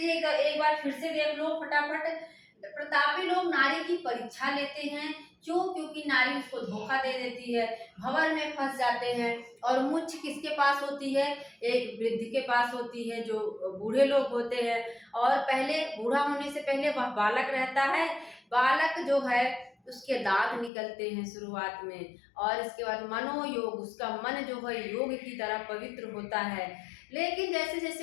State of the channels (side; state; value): right; drops out; at 20.7 s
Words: एक बार फिर से देख लो फटाफट। प्रतापी लोग नारी की परीक्षा लेते हैं। क्यों? क्योंकि नारी उसको धोखा दे देती है, भंवर में फंस जाते हैं। और मुच्छ किसके पास होती है? एक वृद्ध के पास होती है, जो बूढ़े लोग होते हैं। और पहले, बूढ़ा होने से पहले वह बालक रहता है। बालक जो है उसके दांत निकलते हैं शुरुआत में। और इसके बाद मनोयोग, उसका मन जो है योग की तरह पवित्र होता है। लेकिन जैसे